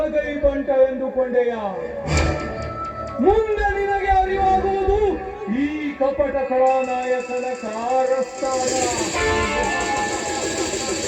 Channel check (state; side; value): identical; both; correlation 1.00